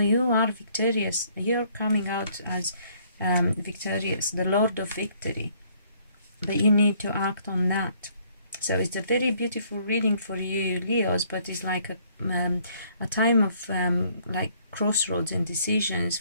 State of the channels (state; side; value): inverted; both; correlation -0.63